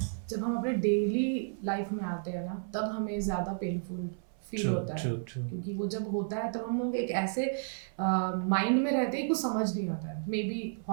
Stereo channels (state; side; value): silent; left; 56 dB below the other